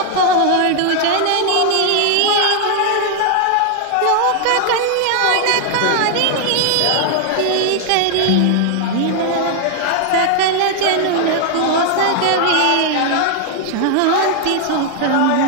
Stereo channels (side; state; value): both; different; correlation 0.00